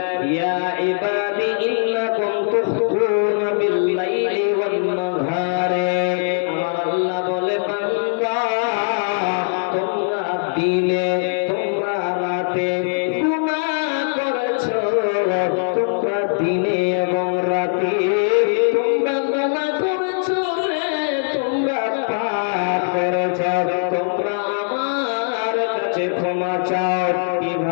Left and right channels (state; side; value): silent; right; digital silence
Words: ইয়া ইবাদি ইন্নাকুম তুখতুনা বিল লাইলি ওয়ান নাহারে, আমার আল্লাহ বলে বান্দা তোমরা দিনে তোমরা রাতে গুনাহ করেছো, তোমরা দিনে এবং রাতে তোমরা গুনাহ করেছো রে, তোমরা পাপ করেছো,